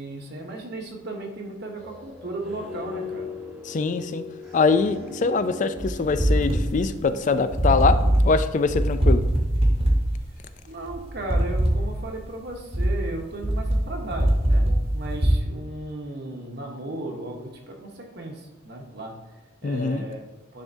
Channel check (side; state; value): both; normal; correlation 0.65